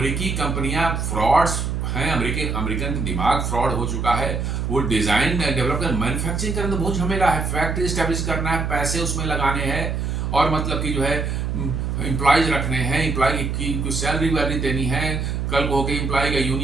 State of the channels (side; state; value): right; noise; hum, 1 dB below the sound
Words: कंपनियां फ्रॉड्स हैं, अमेरिकन का दिमाग फ्रॉड हो चुका है। वो डिजाइन डेवलप कर मैन्युफैक्चरिंग करना तो बहुत झमेला है, फैक्ट्री स्टैब्लिश करना है, पैसे उसमें लगाने हैं और मतलब कि जो है एम्प्लॉयज रखने हैं, एम्प्लॉय की कुछ सैलरी वैलरी देनी है। कल को होकर एम्प्लॉय का